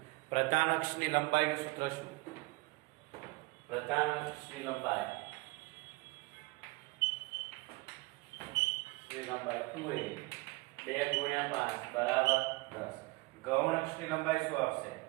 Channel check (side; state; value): left; quieter; 24.8 dB